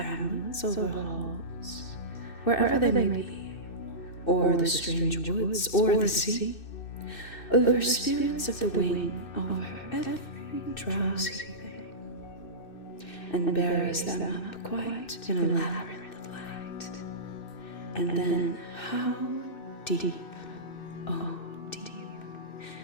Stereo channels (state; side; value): late; right; 2.6 ms